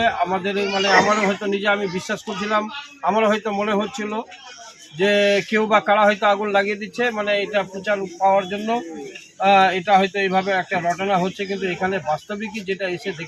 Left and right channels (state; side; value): identical; both; correlation 1.00